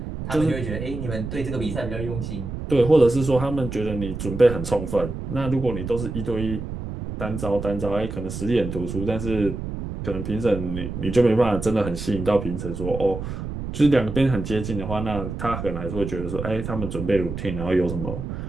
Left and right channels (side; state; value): right; noise; rumble, 6 dB below the sound